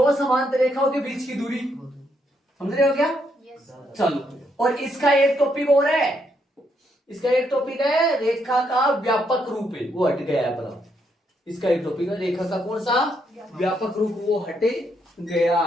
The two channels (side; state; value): both; normal; correlation 0.76